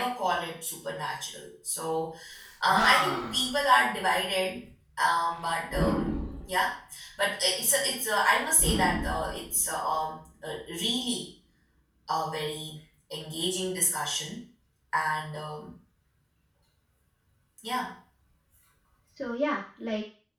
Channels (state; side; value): identical; both; correlation 1.00